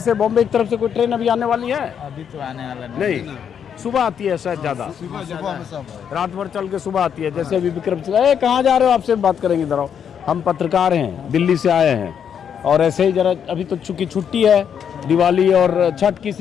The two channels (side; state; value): right; quieter; 8.0 dB